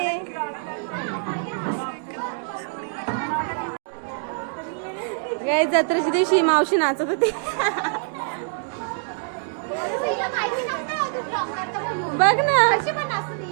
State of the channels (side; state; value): left; silent; digital silence